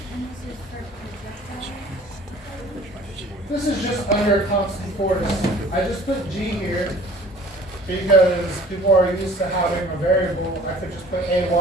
This is just under constant force. I just put g here because people are used to having a variable. I could just put ay,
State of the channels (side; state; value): both; normal; correlation 0.49